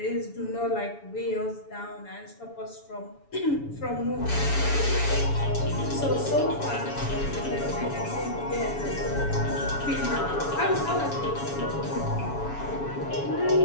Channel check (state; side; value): late; right; 7.1 ms